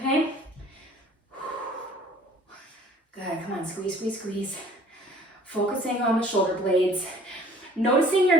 Good, come on, squeeze, squeeze, squeeze. Focusing on the shoulder blades. Noticing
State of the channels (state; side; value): normal; both; correlation 0.53